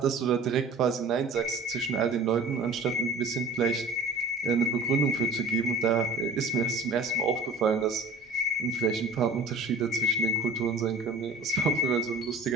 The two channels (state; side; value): quieter; left; 3.2 dB